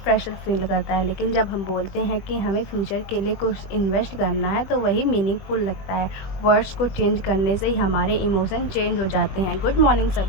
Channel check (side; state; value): right; late; 21 ms